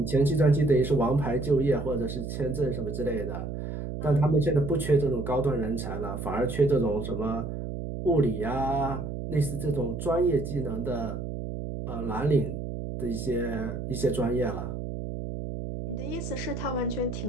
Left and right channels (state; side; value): noise; right; hum, 6 dB below the sound